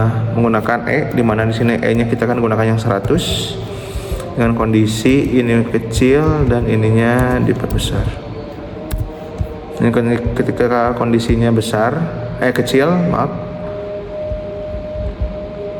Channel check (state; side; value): identical; both; correlation 1.00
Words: di mana di sini E-nya kita akan gunakan yang 100 dengan kondisi ini kecil dan ininya diperbesar. Ini ketika kondisinya kecil, maaf.